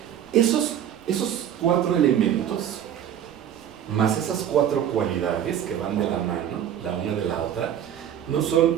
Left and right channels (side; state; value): left; quieter; 9.9 dB